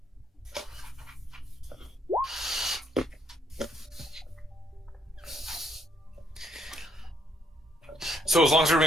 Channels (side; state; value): both; normal; correlation 0.70